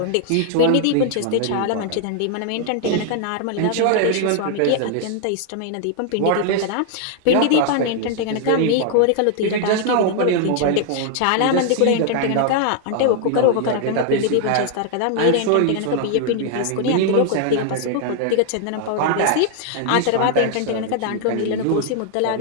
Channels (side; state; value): both; different; correlation 0.00